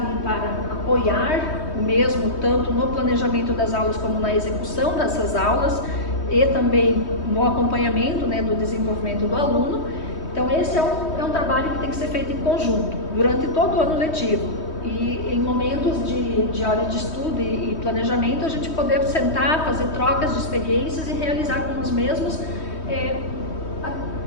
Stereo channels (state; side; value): late; right; 3.2 ms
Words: para apoiar o mesmo, tanto no planejamento das aulas como na execução dessas aulas e também no acompanhamento, né, do desenvolvimento do aluno. Então esse é um trabalho que tem que ser feito em conjunto, durante todo o ano letivo. E em momentos de hora de estudo e planejamento, a gente poder sentar, fazer trocas de experiências e realizar com os mesmos